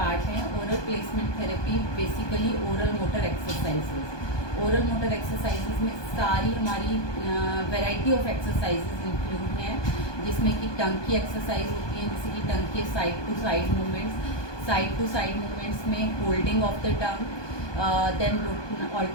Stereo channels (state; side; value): late; right; 1.2 ms